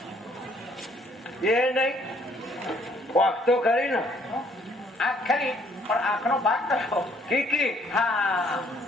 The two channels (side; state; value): both; normal; correlation 0.63